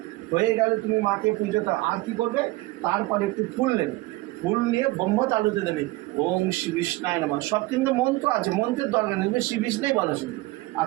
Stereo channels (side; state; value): left; quieter; 20.1 dB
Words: হয়ে গেলে তুমি মাকে পুজো দাও। আর কী করবে? তারপরে একটু ফুল নেবে, ফুল নিয়ে ব্রহ্ম তালুতে দেবে ওং শ্রী বিষ্ণায় নমঃ। সব কিন্তু মন্ত্র আছে, মন্ত্রের দরকার নেই, শ্রী বিষ্ণুই বলো শুধু।